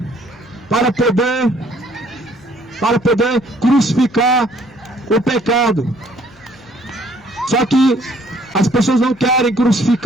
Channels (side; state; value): left; noise; hum, 27 dB below the sound